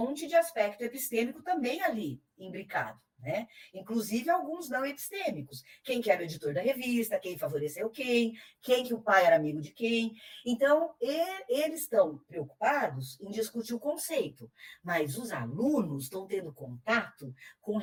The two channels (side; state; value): both; identical; correlation 1.00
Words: de aspecto epistêmico também ali, imbricado, né? Inclusive alguns não epistêmicos. Quem que era o editor da revista, quem favoreceu quem que o pai era amigo de quem. Então, eles estão preocupados em discutir o conceito, mas os alunos estão tendo contato com